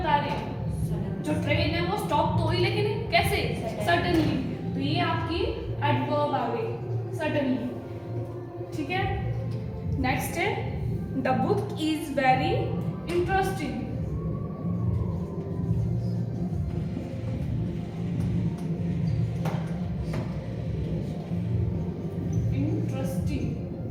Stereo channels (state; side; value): identical; both; correlation 1.00